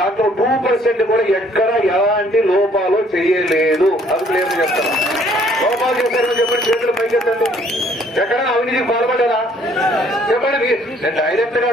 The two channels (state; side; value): normal; both; correlation 0.62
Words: 2% కూడా ఎక్కడ ఎలాంటి లోపాలు చేయలేదు. అది క్లియర్ చెప్తాను. లోపాలు చేశారని చెప్పండి, చేతులు పైకెత్తండి. ఎక్కడైనా అవినీతికి పాల్పడ్డారా చెప్పండి. నేను డైరెక్ట్ గా